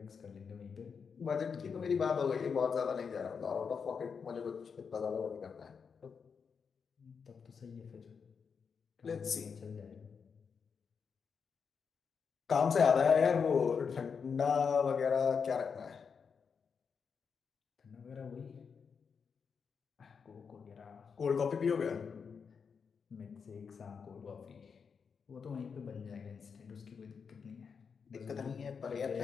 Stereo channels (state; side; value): quieter; right; 6.1 dB